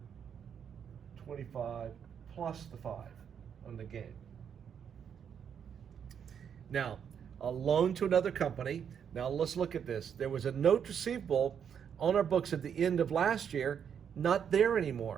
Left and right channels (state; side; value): quieter; left; 7.9 dB